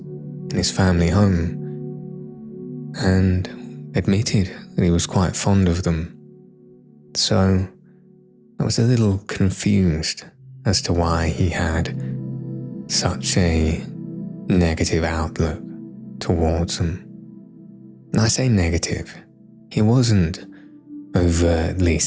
his family home and admitted that he was quite fond of them. So I was a little confused as to why he had such a negative outlook towards them. And I say negative. He wasn't overtly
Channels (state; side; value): identical; both; correlation 1.00